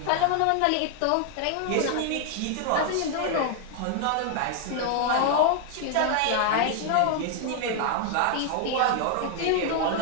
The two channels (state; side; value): different; both; correlation 0.00